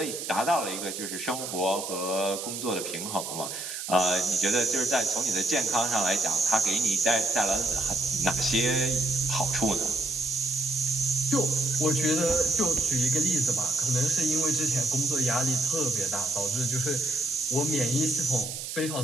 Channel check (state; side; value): noise; right; hiss, 6 dB below the sound